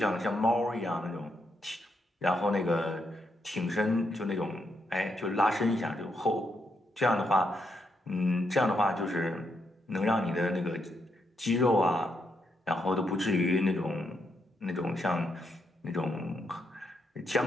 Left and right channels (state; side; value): normal; both; correlation 0.79